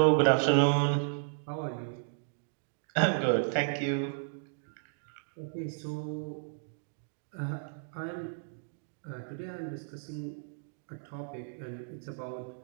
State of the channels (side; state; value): left; silent; digital silence